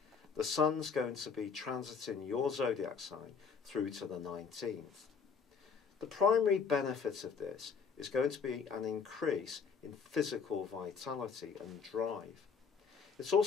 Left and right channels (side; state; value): right; quieter; 5.9 dB